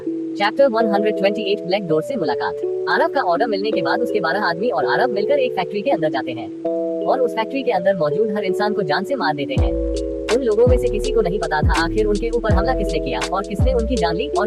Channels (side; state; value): both; identical; correlation 1.00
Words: चैप्टर 128 ब्लैक डोर से मुलाकात। आरव का ऑर्डर मिलने के बाद उसके 12 आदमी और आरव मिलकर एक फैक्ट्री के अंदर जाते हैं और उस फैक्ट्री के अंदर मौजूद हर इंसान को जान से मार देते हैं। उन लोगों में से किसी को नहीं पता था आखिर उनके ऊपर हमला किसने किया और किसने उनकी जान ली और